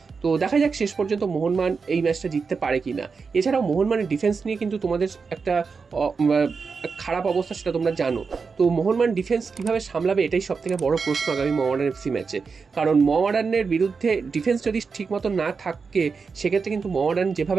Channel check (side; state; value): left; quieter; 5.1 dB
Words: তো দেখা যাক শেষ পর্যন্ত মোহনবাগান এই ম্যাচটা জিততে পারে কি না। এছাড়াও মোহনবাগানের ডিফেন্স নিয়ে কিন্তু তোমাদের একটা খারাপ অবস্থা, সেটা তোমরা জানো। তো মোহনবাগান ডিফেন্স কীভাবে সামলাবে, এটাই সবথেকে বড় প্রশ্ন আগামী মোহামেডান এফসি ম্যাচে। কারণ মোহামেডানের বিরুদ্ধে ডিফেন্স যদি ঠিকমতো না থাকে, সেক্ষেত্রে কিন্তু মোহামেডান